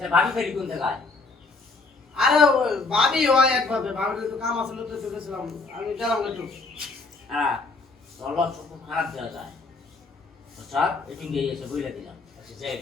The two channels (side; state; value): right; quieter; 3.8 dB